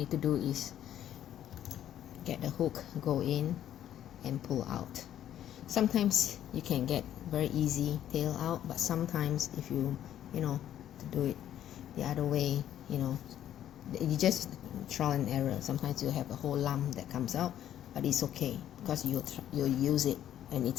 to do is get the hook, go in and pull out. Sometimes you can get very easy tail out, but sometimes if you to do it the other way, you just trial and error. Sometimes you have a whole lump that comes out, but it's okay because you'll use it and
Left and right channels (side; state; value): right; quieter; 11.2 dB